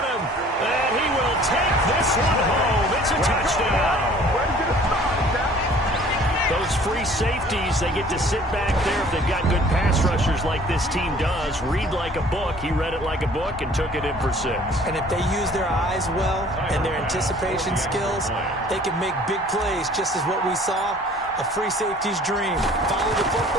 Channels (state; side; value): normal; both; correlation 0.52